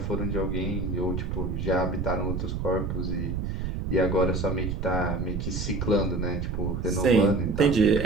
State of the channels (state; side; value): noise; right; rumble, 3 dB below the sound